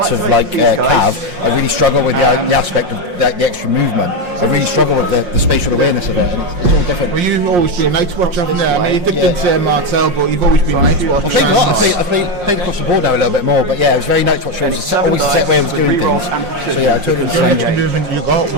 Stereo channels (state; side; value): late; left; 5.6 ms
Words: of like cav, I really struggle with the aspect of the extra movement. I really struggle with the spatial awareness of it, and it's all different. Well, you've always been Night's Watch, haven't you? I mean, you dipped into Martel, but you've always been Night's Watch. I played across the board now a little bit more, but yeah, it was very Night's Watch. It was always the same way I was doing things. So yeah, I took it The only extra movement you got